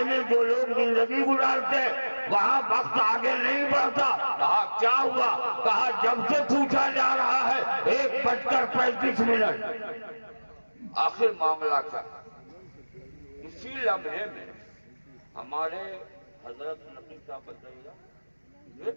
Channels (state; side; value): inverted; both; correlation -1.00